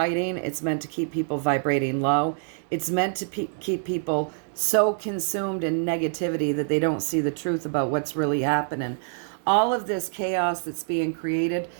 It's meant to keep people vibrating low. It's meant to keep people so consumed in negativity that they don't see the truth about what's really happening. All of this chaos that's being created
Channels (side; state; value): left; silent; digital silence